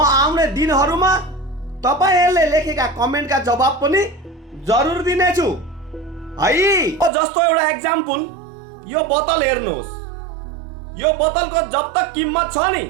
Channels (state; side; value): drops out; left; at 7.1 s